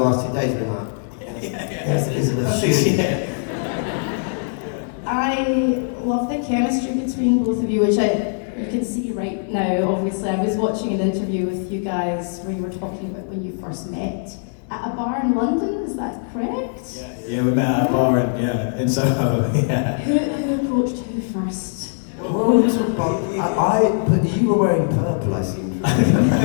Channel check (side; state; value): right; silent; digital silence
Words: last 2 days, been like, yes, Elizabeth, shoot. I love the chemistry between both of you, which you can see right now. Obviously, I was watching an interview with you guys where you were talking about when you first met. at a bar in London, is that correct? Yeah, we met at a bar in Soho, yeah. Who approached who first? Well, but you were wearing purple, I seem to remember.